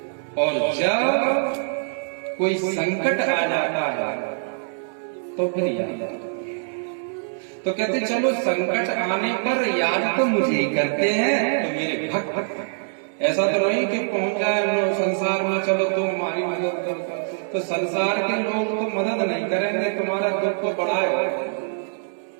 और जब कोई संकट आ जाता है तो फिर याद। तो कहते चलो संकट आने पर याद तो मुझे ही करते हैं, तो मेरे भक्त। ऐसा तो नहीं कि पहुंच जाए संसार में, चलो तुम हमारी मदद करो, तो संसार के लोग तो मदद नहीं करेंगे, तुम्हारा दुख को बढ़ाए,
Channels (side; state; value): left; silent; digital silence